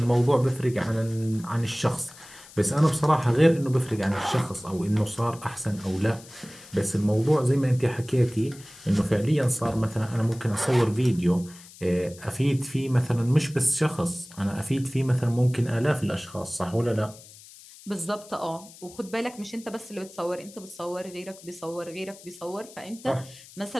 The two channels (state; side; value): noise; left; hiss, 20 dB below the sound